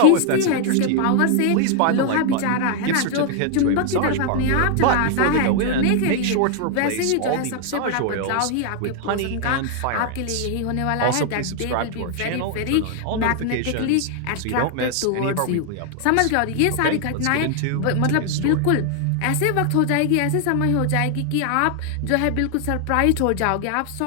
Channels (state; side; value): different; both; correlation 0.00